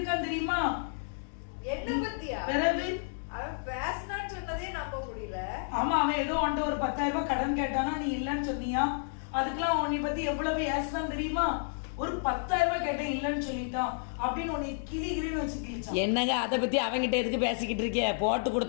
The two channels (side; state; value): right; silent; digital silence